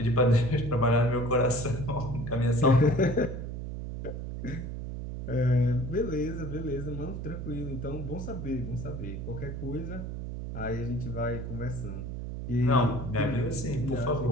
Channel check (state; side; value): noise; right; hum, 6 dB below the sound